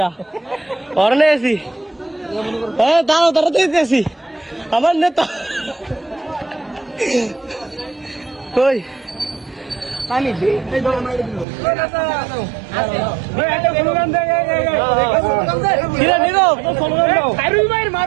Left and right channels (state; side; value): drops out; left; at 11.5 s